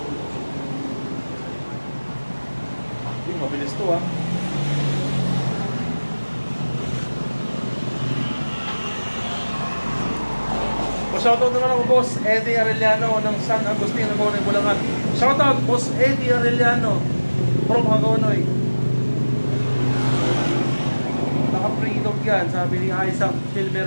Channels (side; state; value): both; inverted; correlation -1.00